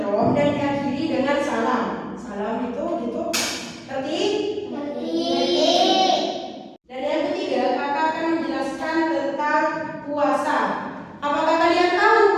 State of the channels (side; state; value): both; identical; correlation 1.00